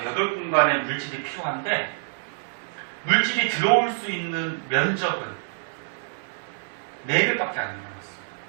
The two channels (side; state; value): left; silent; 61 dB below the other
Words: 8공간의 물질이 필요한데 물질이 들어올 수 있는 면적은 4배밖에 안 늘어났어.